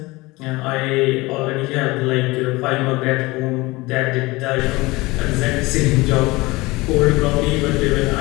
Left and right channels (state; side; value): quieter; right; 22.0 dB